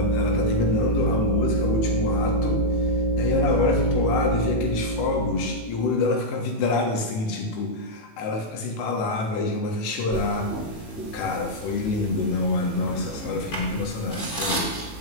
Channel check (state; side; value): late; right; 18 ms